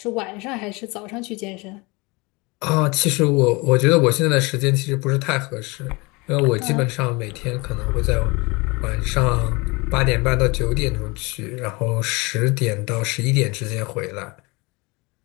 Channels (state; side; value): quieter; right; 25.9 dB